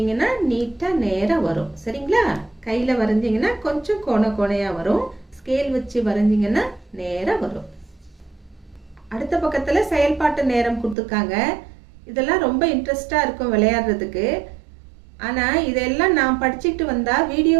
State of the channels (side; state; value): left; drops out; at 11.0 s